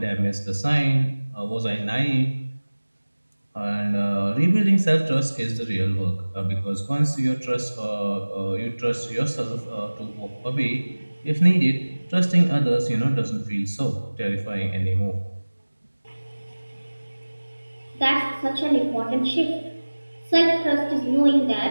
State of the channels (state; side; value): inverted; both; correlation -1.00